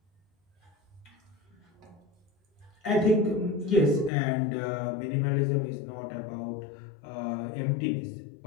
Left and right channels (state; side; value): drops out; right; at 4.1 s